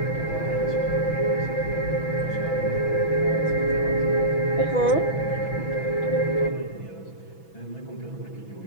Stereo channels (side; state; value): right; late; 6.1 ms